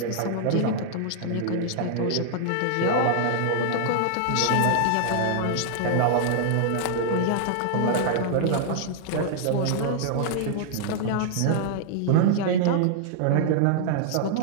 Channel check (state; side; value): different; both; correlation -0.01